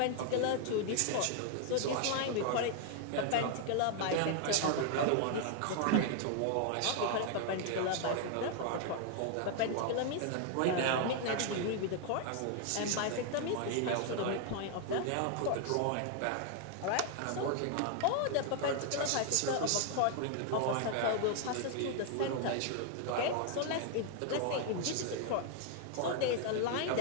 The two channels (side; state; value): both; different; correlation 0.00